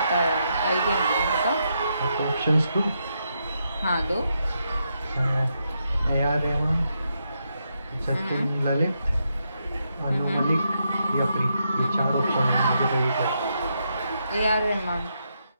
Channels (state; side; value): inverted; both; correlation -0.81